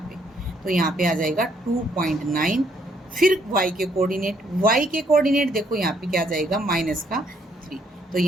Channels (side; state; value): both; normal; correlation 0.69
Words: पे, तो यहाँ पे आ जाएगा 2.9। फिर y के कोऑर्डिनेट देखो यहाँ पे क्या आ जाएगा, -3। तो